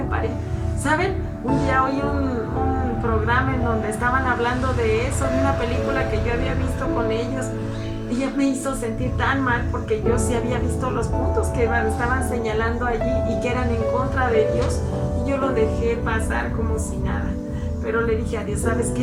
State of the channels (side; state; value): both; identical; correlation 1.00